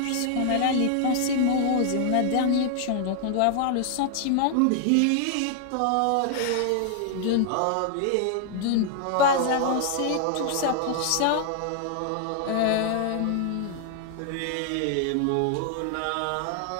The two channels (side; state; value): both; different; correlation 0.00